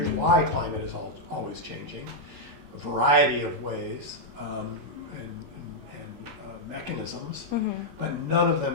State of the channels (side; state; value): left; late; 20 ms